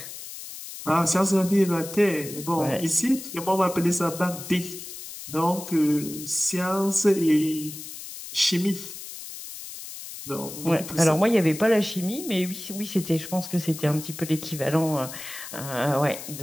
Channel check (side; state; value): left; noise; hiss, 11 dB below the sound